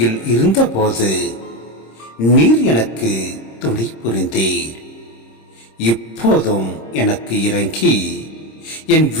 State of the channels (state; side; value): late; right; 26 ms